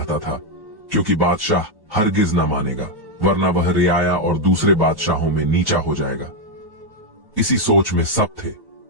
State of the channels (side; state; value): left; late; 1.1 ms